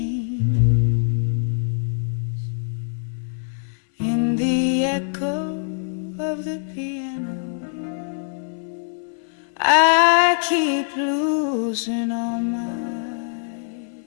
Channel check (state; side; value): silent; right; 63 dB below the other